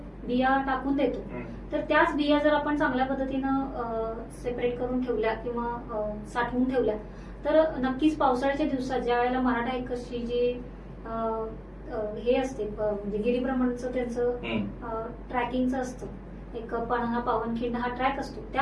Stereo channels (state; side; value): identical; both; correlation 1.00